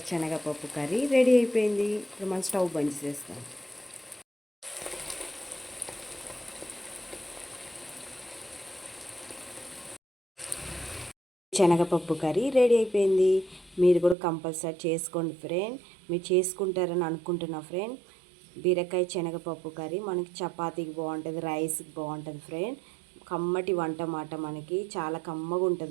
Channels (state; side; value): drops out; left; at 14.2 s